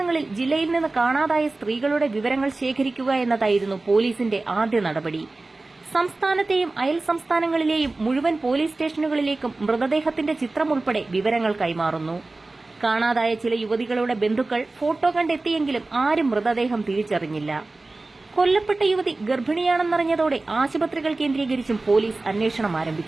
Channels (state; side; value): quieter; left; 3.2 dB